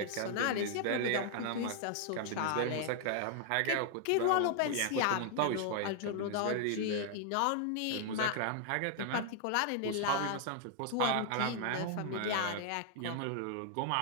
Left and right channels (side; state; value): both; different; correlation 0.00